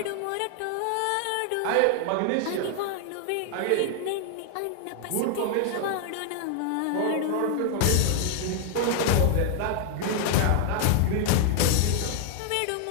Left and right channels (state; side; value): different; both; correlation 0.00